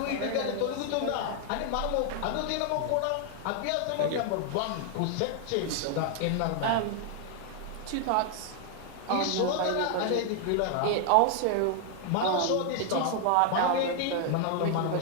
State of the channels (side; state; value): both; different; correlation 0.00